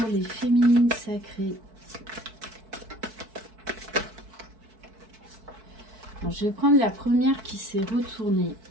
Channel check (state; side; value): late; left; 4.6 ms